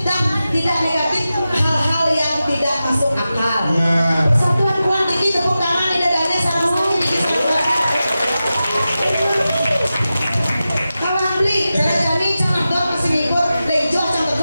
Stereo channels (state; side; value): inverted; both; correlation -0.93